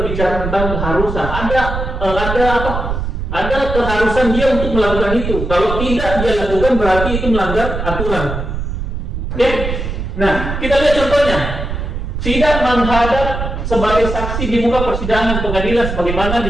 tentang keharusan. Ada keharusan dia untuk melakukan itu. Kalau tidak dia lakukan berarti itu melanggar aturan. Oke? Nah, kita lihat contohnya. Tidak menghadap sebagai saksi di muka persidangan pengadilan sebagaimana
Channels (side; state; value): right; noise; rumble, 4 dB below the sound